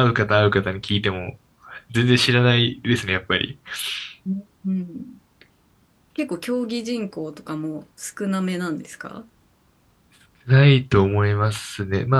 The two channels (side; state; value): both; identical; correlation 1.00